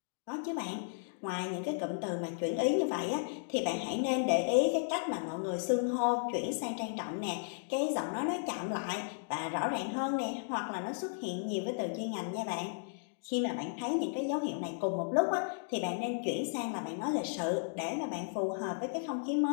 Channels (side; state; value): right; silent; digital silence